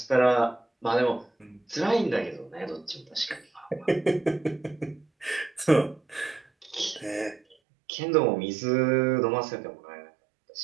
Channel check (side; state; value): left; drops out; at 7.6 s